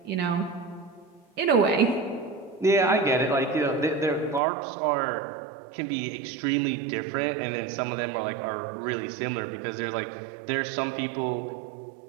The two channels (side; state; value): left; drops out; at 4.4 s